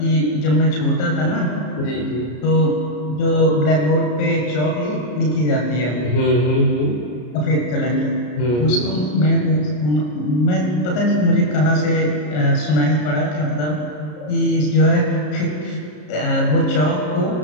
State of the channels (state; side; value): late; right; 33 ms